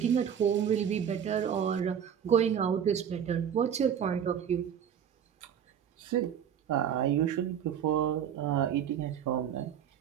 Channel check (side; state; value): left; quieter; 8.6 dB